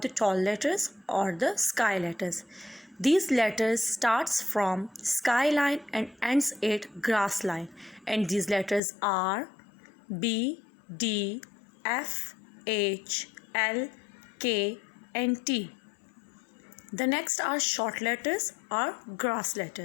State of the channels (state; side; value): drops out; right; at 8.8 s